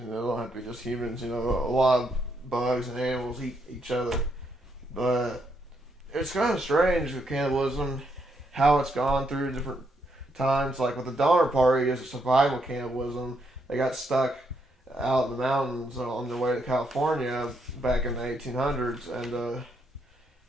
it don't have to be just humans. You know, a lot of bugs and animals eat each other, but it's kind of strange with cannibalism, how it's gone through different times. Like with the Donner Party, it's a survival cannibalism. They got stuck out in the mountains on their way to California back in the 1800s, and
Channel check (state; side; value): normal; both; correlation 0.77